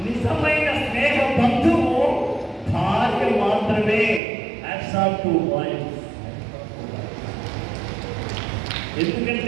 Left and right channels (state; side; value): drops out; left; at 4.2 s